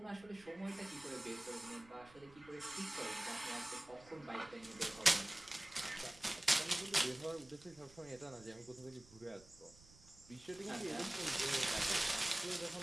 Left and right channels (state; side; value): noise; right; rumble, 23 dB below the sound